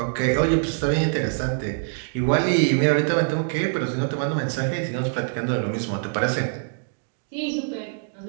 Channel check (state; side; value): silent; left; digital silence